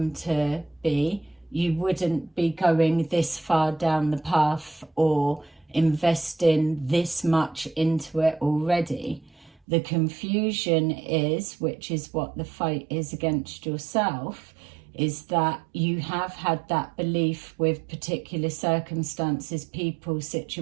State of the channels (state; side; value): drops out; left; at 9.6 s